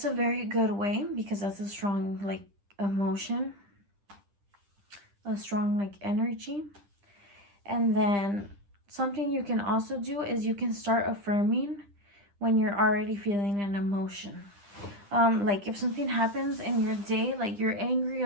a very good way, because that's a strong like emotion, a strong like energy. And then something you can also do is you can start affirming when you're already feeling an emotion. Like if something happens in your day, like you're angry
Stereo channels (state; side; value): late; left; 10 ms